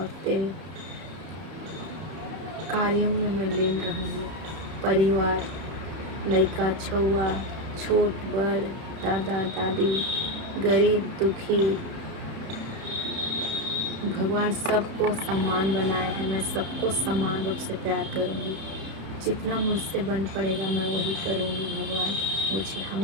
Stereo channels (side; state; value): left; late; 31 ms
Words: तेरे कार्यों में मैं लीन रहूँगी। परिवार, लड़का छुआ, छोट बड़, दादा दादी, गरीब दुखी, भगवान सबको समान बनाए हैं। मैं सबको समान रूप से प्यार करूँगी। जितना मुझसे बन पड़ेगा मैं वही करूँगी। भगवान मुझे